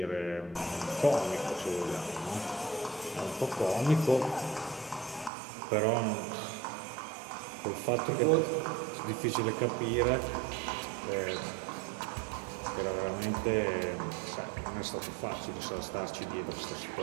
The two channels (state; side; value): drops out; left; at 5.3 s